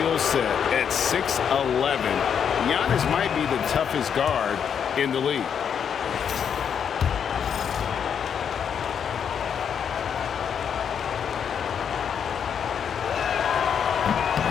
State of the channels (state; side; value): quieter; right; 7.7 dB